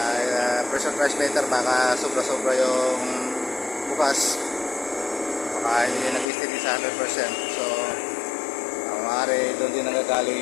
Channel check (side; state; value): right; drops out; at 6.2 s